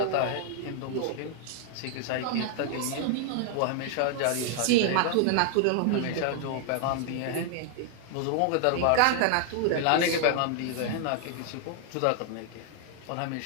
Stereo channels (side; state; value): both; different; correlation 0.00